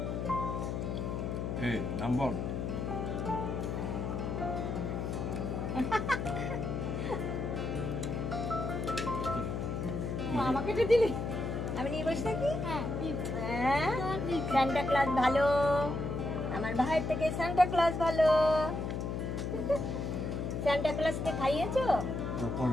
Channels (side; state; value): left; noise; hum, 2 dB below the sound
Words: নাম্বার আমাকে তো দিলি, আমি নিয়ে বসে থাকি। সান্টা ক্লজ ভালো, আমার ভাইয়ের থেকে সান্টা ক্লজ ভালো। সান্টা ক্লজকে খাইয়েছো?